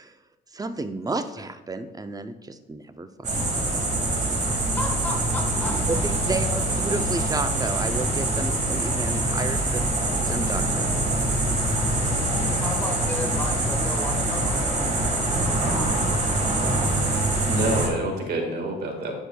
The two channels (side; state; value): both; normal; correlation 0.40